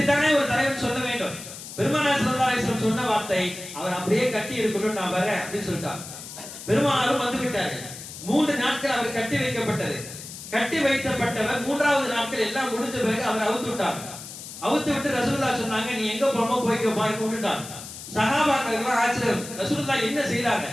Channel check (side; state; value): left; noise; hiss, 12 dB below the sound